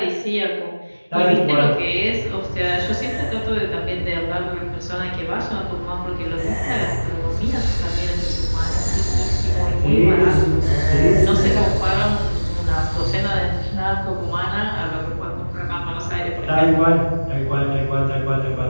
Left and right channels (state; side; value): inverted; both; correlation -1.00